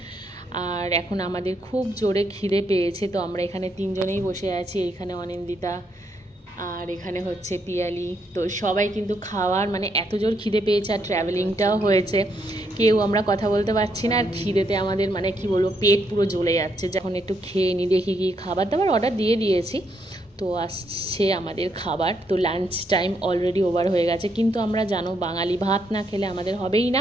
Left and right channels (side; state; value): both; normal; correlation 0.76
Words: আর এখন আমাদের খুব জোরে খিদে পেয়েছে। তো আমরা এখানে তিনজনেই বসে আছি, এখানে অনিন্দিতা আর এখানে হচ্ছে পিয়ালি। তো সবাই কিন্তু খাওয়ার মানে এত জোর খিদে পেয়েছে আর ট্র্যাভেলিংটাও হয়েছে, কেউ আমরা কথা বলতে পারছি না। আর খিদেতে আমাদের মানে কি বলবো, পেট পুরো জ্বলে যাচ্ছে। যখন একটু খেয়ে নিই, দেখি কি খাবার দাবার অর্ডার দিয়ে দিয়েছি। তো আসছে আমাদের খাবার। তো লাঞ্চ টাইম অলরেডি ওভার হয়ে গেছে, কিন্তু আমরা জানো বাঙালি ভাত না খেলে আমাদের হবেই